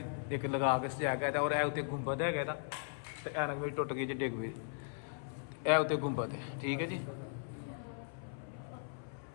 ਇੱਕ ਲਗਾ ਕੇ ਸਜਾਇਆ ਗਿਆ ਔਰ ਇਹ ਉੱਤੇ ਗੁੰਬਦ ਹੈਗਾ ਇਹਦਾ ਤੇ ਐਨਕ ਵੀ ਟੁੱਟ ਗਈ ਜੀ ਡਿੱਗ ਪਈ। ਇਹ ਉੱਤੇ ਗੁੰਬਦ ਹੈ। ਠੀਕ ਹੈ ਜੀ।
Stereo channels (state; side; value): silent; right; 53 dB below the other